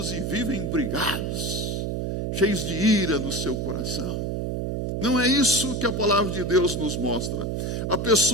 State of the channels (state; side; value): noise; right; hum, 2 dB below the sound